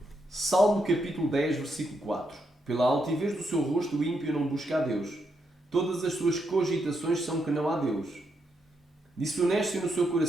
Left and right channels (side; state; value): both; normal; correlation 0.80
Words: Salmo capítulo 10, versículo 4. Pela altivez do seu rosto o ímpio não busca a Deus. Todas as suas cogitações são que não há Deus. Disse honesto no seu